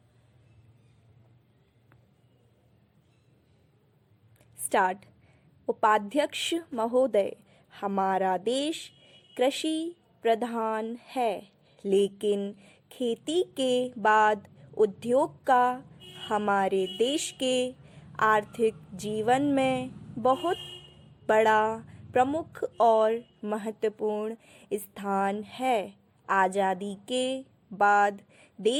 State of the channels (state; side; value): identical; both; correlation 1.00